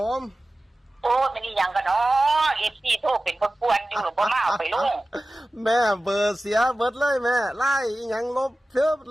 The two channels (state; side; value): normal; both; correlation 0.96